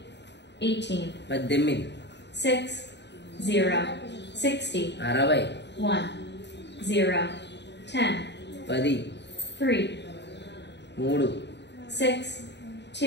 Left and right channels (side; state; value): right; late; 0.51 ms